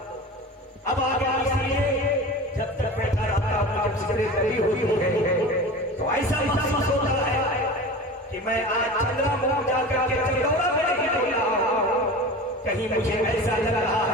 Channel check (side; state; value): both; normal; correlation 0.33